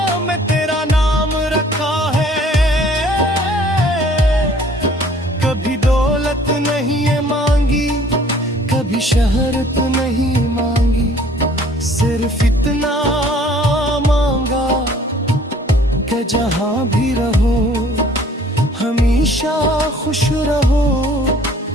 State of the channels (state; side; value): normal; both; correlation 0.55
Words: में तेरा नाम रखा है। कभी दौलत नहीं है मांगी, कभी शहरत नहीं मांगी, सिर्फ इतना मांगा कि जहां भी रहो हमेशा खुश रहो।